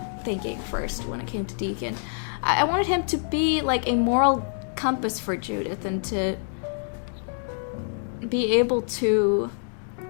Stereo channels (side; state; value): right; silent; digital silence